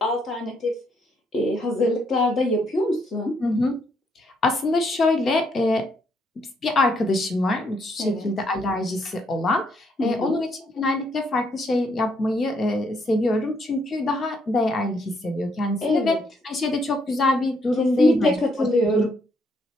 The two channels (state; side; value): normal; both; correlation 0.73